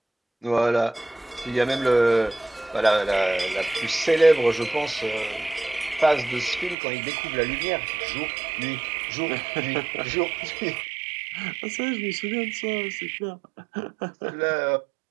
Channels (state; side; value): drops out; left; at 6.8 s